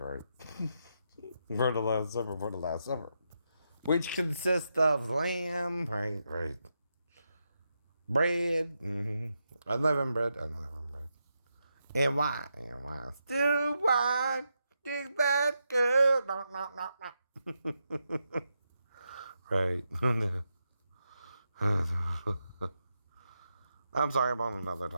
For the Last Supper. Which consists of lamb, right. Bread, unleavened bread. And wine. Still wine, dig that girl. No. Right. I'm sorry, I'm on another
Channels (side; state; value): both; inverted; correlation -0.84